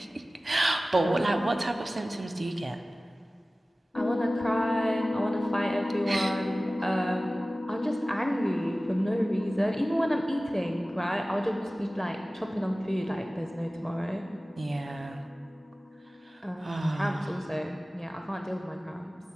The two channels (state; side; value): normal; both; correlation 0.97